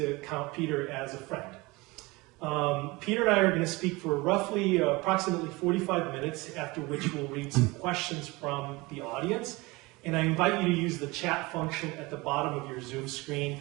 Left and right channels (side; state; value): left; quieter; 23.4 dB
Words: count Peter as a friend. Peter and I are going to speak for roughly approximately 45 minutes, after which we'll read some questions from the audience. And I invite you to use the chat function at the bottom of your Zoom screen,